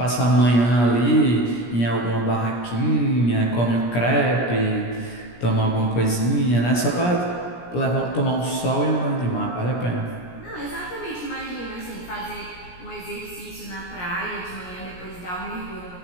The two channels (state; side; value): late; right; 17 ms